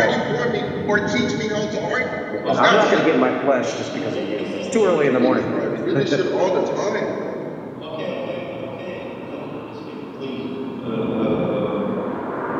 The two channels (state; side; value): identical; both; correlation 1.00